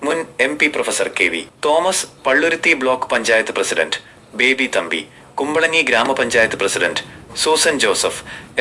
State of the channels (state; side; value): identical; both; correlation 1.00